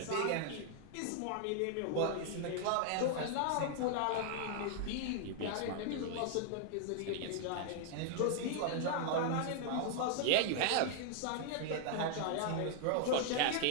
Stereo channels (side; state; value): both; different; correlation 0.00